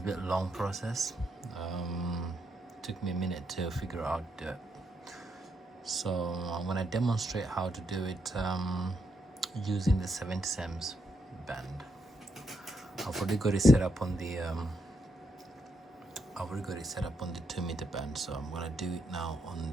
bit long process. Took me a minute to figure out that. So I'm gonna demonstrate how to do it using the 70 cms band. I've already got it set up on the 2-meter band, so I'm gonna do it now on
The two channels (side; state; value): both; normal; correlation 0.79